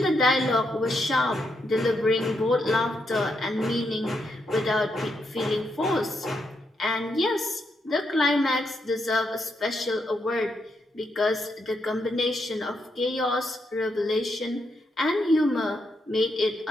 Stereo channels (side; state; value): both; normal; correlation 0.80